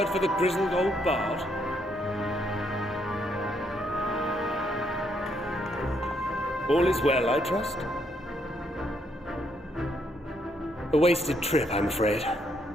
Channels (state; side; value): normal; both; correlation 0.74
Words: for the grizzled old bard? All is well, I trust? A wasted trip, I'm afraid.